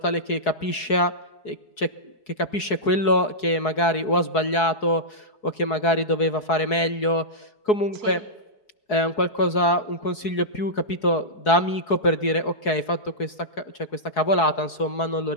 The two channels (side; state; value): right; late; 4.7 ms